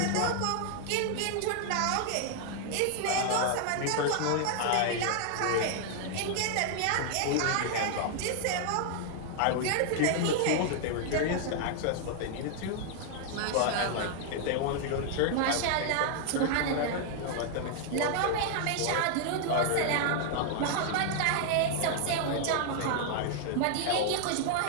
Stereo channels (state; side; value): different; both; correlation 0.00